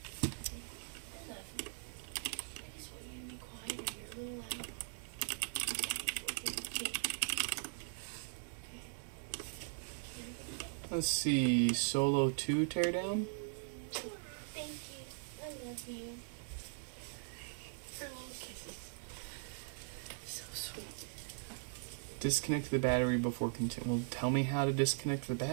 I love you. I just want you to be quiet and you're a little loud. Let's see, Solo 2 teardown? Thank you. I love you. Oh, kisses. So sweet. Disconnect the battery before continue. Well, tell me how to disconnect the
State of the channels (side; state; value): left; silent; digital silence